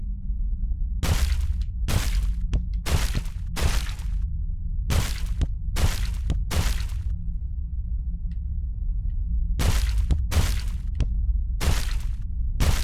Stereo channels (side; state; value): both; identical; correlation 1.00